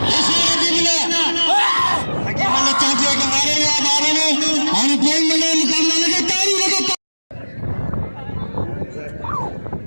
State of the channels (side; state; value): both; inverted; correlation -1.00